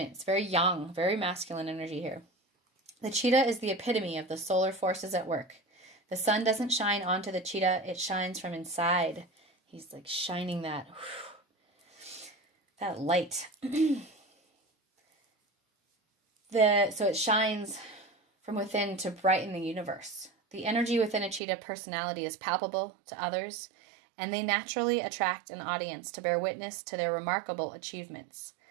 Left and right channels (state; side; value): drops out; left; at 21.4 s